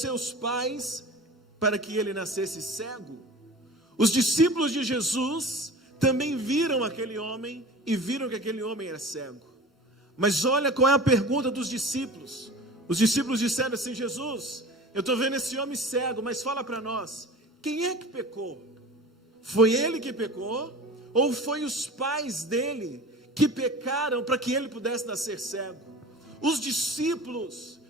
seus pais, para que ele nascesse cego? Os discípulos de Jesus também viram aquele homem, e viram que aquele homem era cego. Mas olha qual é a pergunta dos discípulos. Os discípulos disseram assim: Jesus, eu estou vendo esse homem cego, mas fala para nós, quem é que pecou? Foi ele que pecou? Ou foi os pais dele que pecaram para que ele pudesse nascer cego? Os discípulos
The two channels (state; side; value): normal; both; correlation 0.38